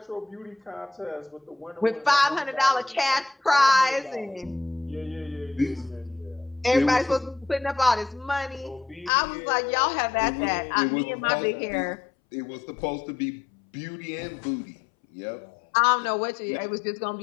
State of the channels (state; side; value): drops out; right; at 9.1 s